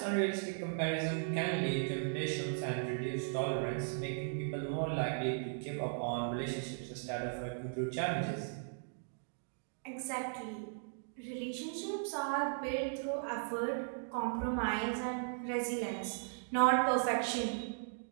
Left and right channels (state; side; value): silent; left; digital silence